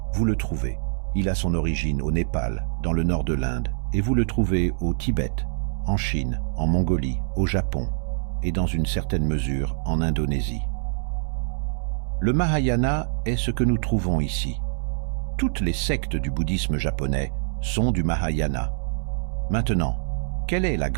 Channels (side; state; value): left; silent; digital silence